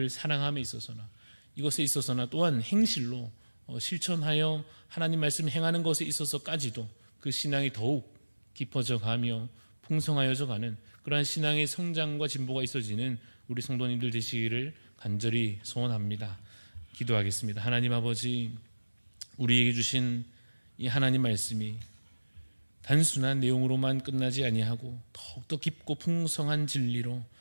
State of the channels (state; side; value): inverted; both; correlation -1.00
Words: 사랑함에 있어서나 이것에 있어서나 또한 행실로 실천하여 하나님 말씀 행하는 것에 있어서까지도 그 신앙이 더욱 깊어져 가며 풍성하여져 가는 그러한 신앙의 성장과 진보가 있어지는 우리 성도님들 되시기를 간절히 소원합니다. 기도하겠습니다. 하나님 아버지, 우리에게 주신 이 하나님 말씀이 단순한 내용으로만 끝나지 아니하고 더욱더 깊고 풍성한 진리로